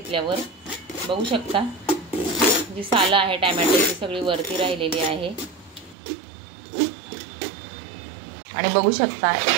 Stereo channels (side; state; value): left; drops out; at 6.0 s